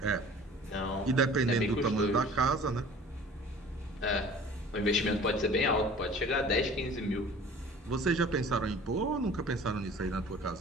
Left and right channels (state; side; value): normal; both; correlation 0.46